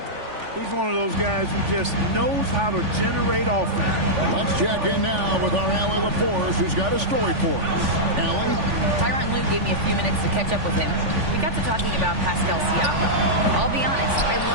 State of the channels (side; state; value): left; late; 3.5 ms